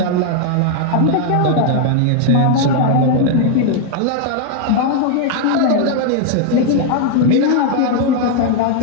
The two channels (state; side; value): different; both; correlation 0.00